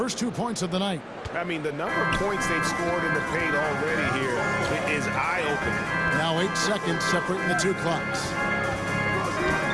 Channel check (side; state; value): both; identical; correlation 1.00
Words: 2 points of the night. I mean, the number of points they've scored in the paint already here is eye-opening. Now 8 seconds separating the 2 clocks.